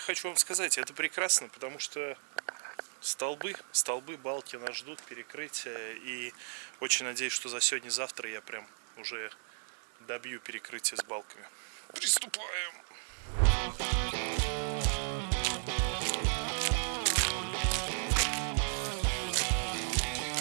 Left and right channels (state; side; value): silent; left; digital silence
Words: вам сказать, это прекрасно, потому что столбы, балки нас ждут, перекрытия. И очень надеюсь, что за сегодня-завтра я прям уже добью перекрытие с балками. Приступаем!